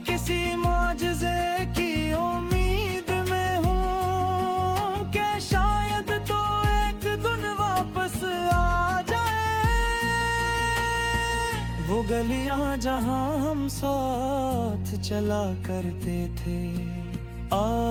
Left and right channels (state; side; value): identical; both; correlation 1.00